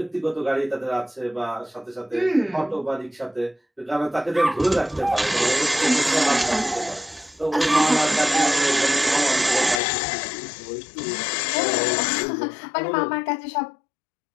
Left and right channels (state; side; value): drops out; right; at 9.8 s